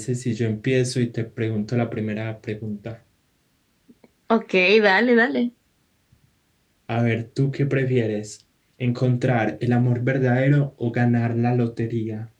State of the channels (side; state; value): both; identical; correlation 1.00